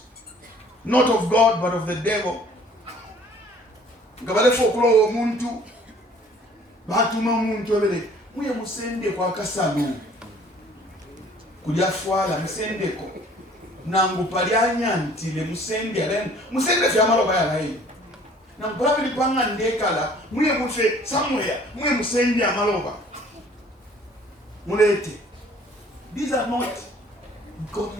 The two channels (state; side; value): normal; both; correlation 0.54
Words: not of God, but of the devil. Muye musende kwa kasalu kujafwala musendeko nangu palyanya ntile musende alen musende fyamalo bayalayi nangu pabili panga ndekala muye mufe somewhere muye musende amaloba mulete. These are not